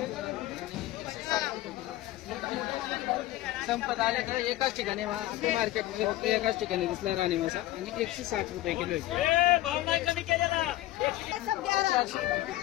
संपत आले तर एकाच ठिकाणी मार्केटमध्ये फक्त एकाच ठिकाणी दिसला राणी मासा आणि 160 रुपये किलो आहे.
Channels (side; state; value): right; quieter; 16.0 dB